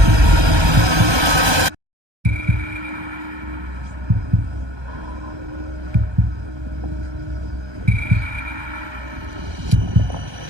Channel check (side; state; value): left; late; 1.2 ms